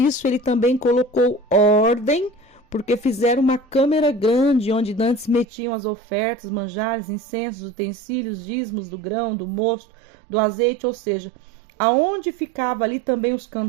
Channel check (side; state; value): left; drops out; at 5.5 s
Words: ele também colocou ordem, porque fizeram uma câmara grande onde antes metiam as ofertas, manjares, incensos, utensílios, dízimos do grão, do mosto, do azeite, ou seja, aonde ficava ali também os